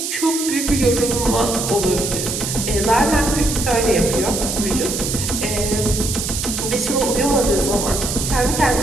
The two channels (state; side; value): noise; right; hiss, 3 dB below the sound